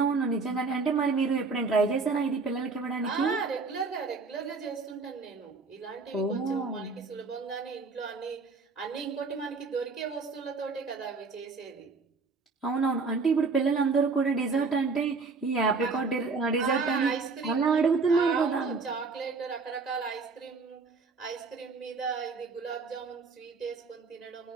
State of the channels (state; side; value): quieter; left; 4.3 dB